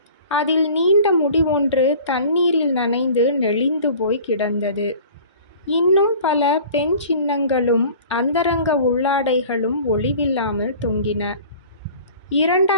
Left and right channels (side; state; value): both; inverted; correlation -0.45